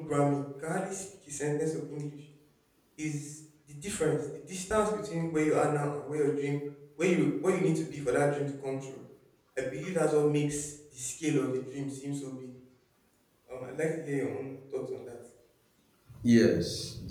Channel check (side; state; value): both; identical; correlation 1.00